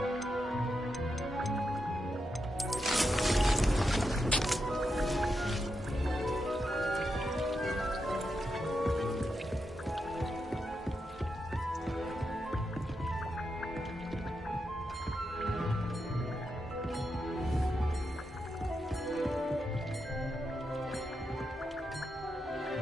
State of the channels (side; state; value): both; normal; correlation 0.85